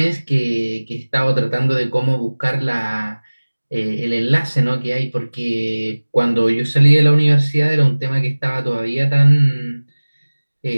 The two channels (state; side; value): inverted; both; correlation -1.00